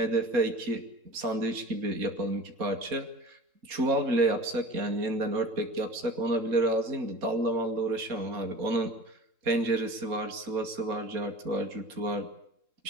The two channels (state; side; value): late; left; 3.7 ms